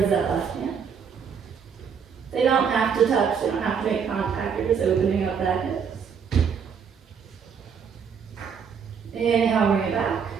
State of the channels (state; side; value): quieter; left; 6.8 dB